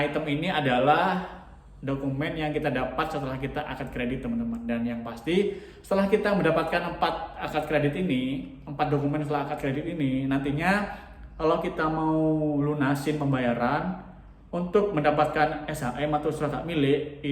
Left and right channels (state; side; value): identical; both; correlation 1.00